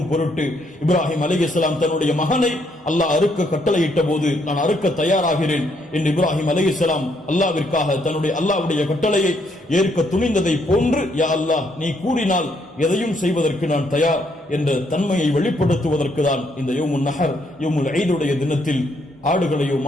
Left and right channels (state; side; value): normal; both; correlation 0.72